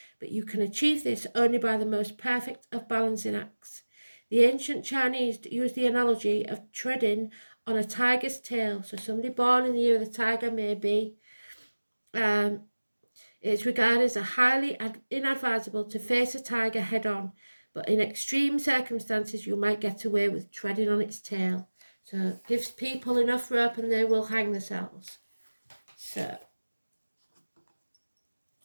but you can achieve this only by the most perfect of balancing acts. The ancient Chinese used the analogy of treading on a tiger's tail. So somebody born in the year of the tiger may be, it's regarded as highly inadvisable to face a tiger head-on, but in extreme circumstances you might get away with treading on its tail. So it gives people enough rope and they will hang themselves. So,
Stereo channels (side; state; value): both; inverted; correlation -1.00